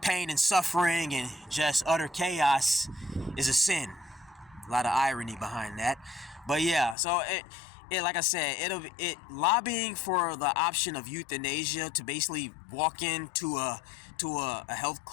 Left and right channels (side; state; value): right; drops out; at 7.0 s